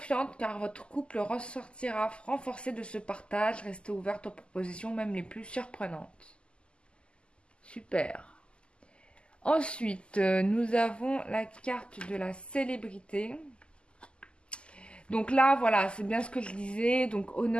car votre couple ressortira renforcé de ce partage. Restez ouverte aux propositions, même les plus surprenantes. Super. Ensuite, nous avons la carte de la célébrité. Donc là, voilà, c'est bien ce que je disais. Donc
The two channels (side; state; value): right; late; 0.051 ms